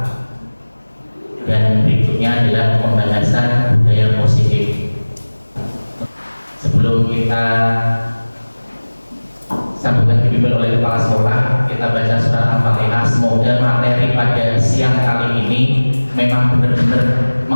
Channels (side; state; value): both; inverted; correlation -1.00